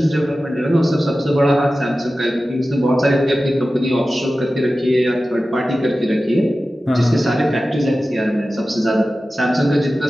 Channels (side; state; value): both; normal; correlation 0.95